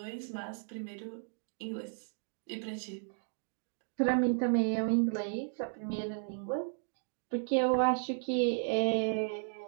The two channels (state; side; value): silent; left; digital silence